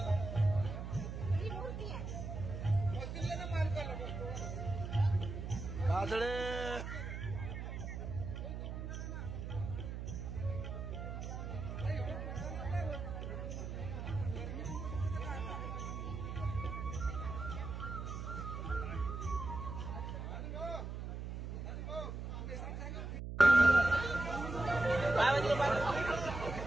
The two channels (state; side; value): noise; right; hum, 6 dB below the sound